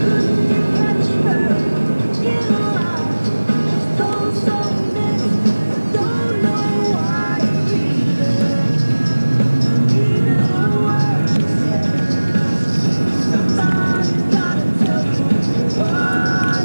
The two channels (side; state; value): both; inverted; correlation -1.00